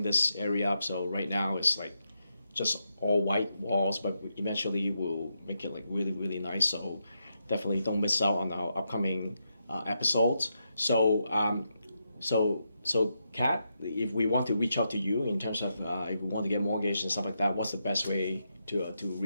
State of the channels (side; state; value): both; inverted; correlation -0.83